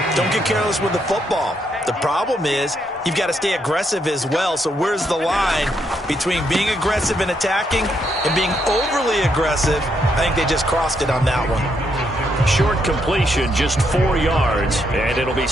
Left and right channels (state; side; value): normal; both; correlation 0.76